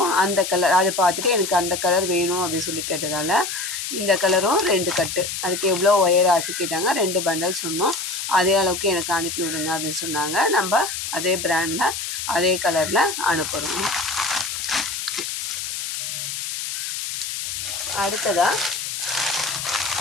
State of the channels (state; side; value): noise; left; hiss, 5 dB below the sound